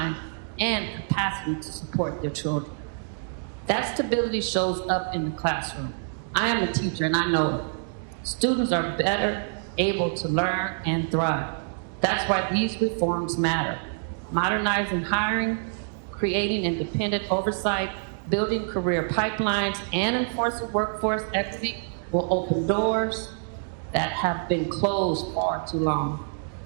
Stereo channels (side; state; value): left; silent; digital silence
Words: and capacity to support their children. That stability shows up in the classroom. I am a teacher and I know it. Students are better able to learn and thrive. That's why these reforms matter. Modernizing hiring, creating independent oversight, building career pipelines, and enforcing workforce equity will open doors that have been closed far too long.